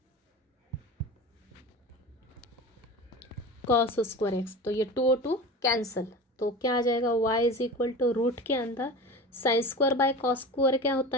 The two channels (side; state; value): both; normal; correlation 0.31